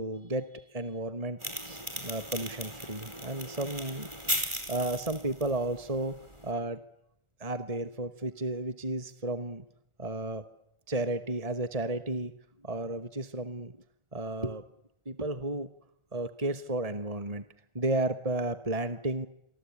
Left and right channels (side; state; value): left; late; 1.4 ms